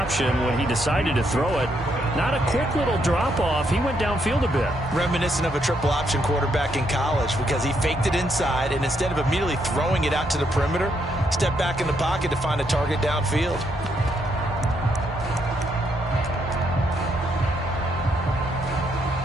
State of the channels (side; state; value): both; normal; correlation 0.76